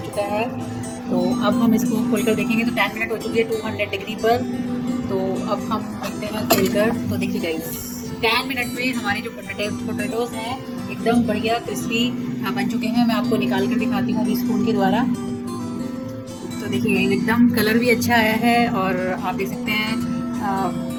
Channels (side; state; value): both; identical; correlation 1.00